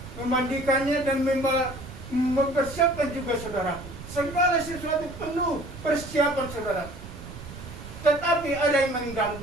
memandikannya dan mempersiapkan juga, saudaraku. Segala sesuatu penuh persiapan, saudaraku. Tetapi ada yang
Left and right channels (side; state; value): right; noise; rumble, 13 dB below the sound